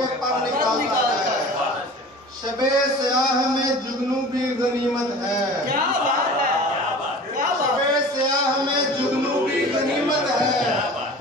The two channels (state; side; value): normal; both; correlation 0.40